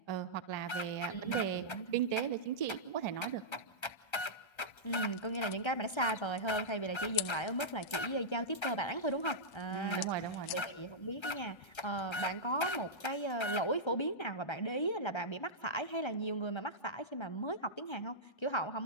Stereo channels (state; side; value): late; right; 1.3 ms